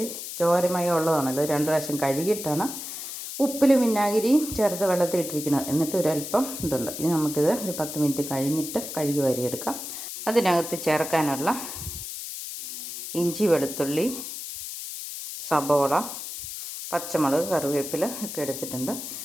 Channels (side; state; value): left; noise; hiss, 8 dB below the sound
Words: ചോരമയം ഉള്ളതാണല്ലോ. 2 പ്രാവശ്യം കഴുകിയിട്ടാണ് ഉപ്പിലും വിനാഗിരിയും ചേർത്ത് വെള്ളത്തിൽ ഇട്ടിരിക്കുന്നത്. എന്നിട്ട് ഒരല്പം ഇതുണ്ട്. ഇനി നമുക്കിത് ഒരു 10 മിനിറ്റ് കഴിഞ്ഞിട്ട് കഴുകി വാരിയെടുക്കാം. അതിനകത്ത് ചേർക്കാനുള്ള ഇഞ്ചി, വെളുത്തുള്ളി, സബോള, പച്ചമുളക്, കറിവേപ്പില ഒക്കെ എടുത്തിട്ടുണ്ട്.